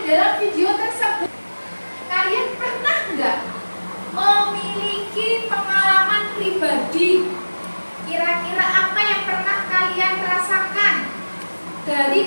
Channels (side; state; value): both; inverted; correlation -1.00